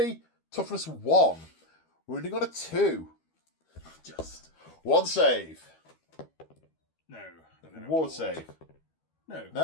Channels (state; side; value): late; right; 12 ms